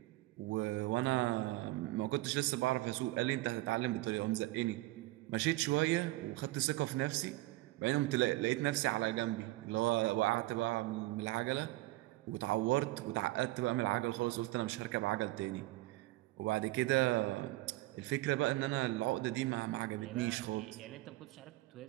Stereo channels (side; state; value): left; quieter; 19.1 dB